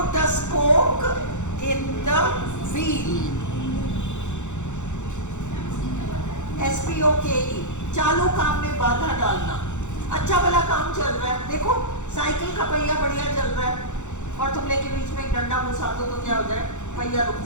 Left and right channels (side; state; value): right; late; 0.84 ms